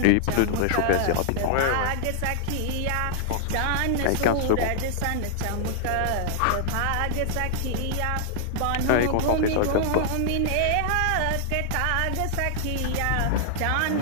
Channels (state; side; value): different; both; correlation -0.01